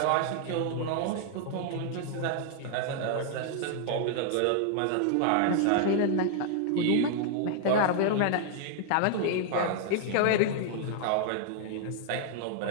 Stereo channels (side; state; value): both; different; correlation 0.00